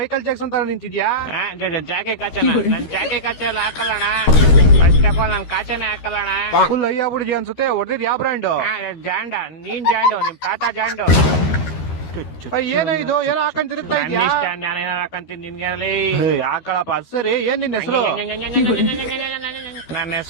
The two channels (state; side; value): late; right; 13 ms